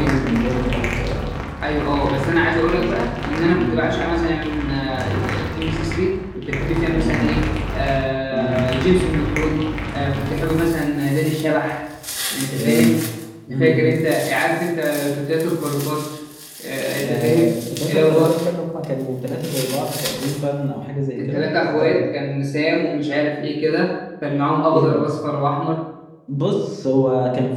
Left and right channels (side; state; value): both; identical; correlation 1.00